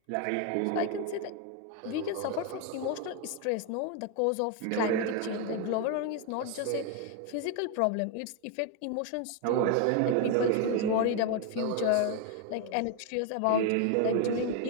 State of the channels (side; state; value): both; different; correlation 0.01